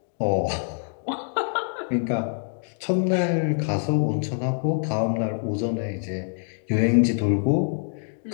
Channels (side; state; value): right; silent; 62 dB below the other